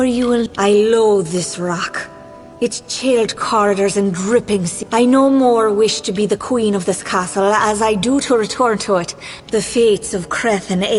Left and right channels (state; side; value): identical; both; correlation 1.00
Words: you will... I loathe this rock. Its chilled corridors and dripping sea. I no more wish to be the queen of this castle as I do to return to it. The fates of Creth and